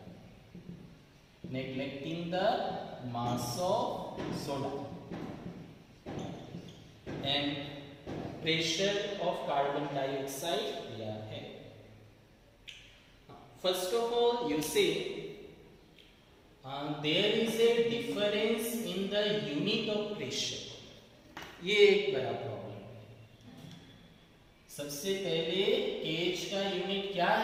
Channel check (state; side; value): identical; both; correlation 1.00